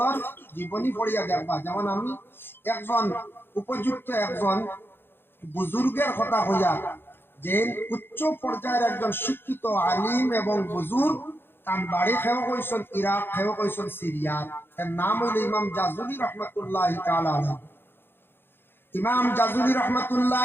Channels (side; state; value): right; late; 0.10 ms